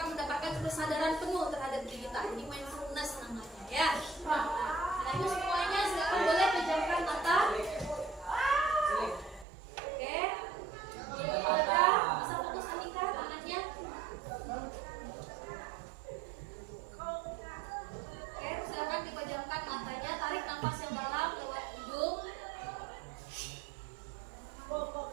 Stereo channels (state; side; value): drops out; left; at 9.5 s